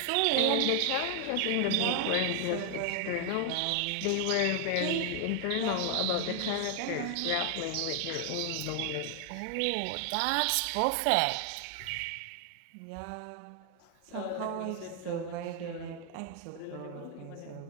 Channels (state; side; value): different; both; correlation 0.00